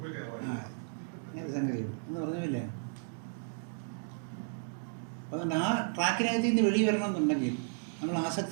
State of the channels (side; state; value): left; silent; digital silence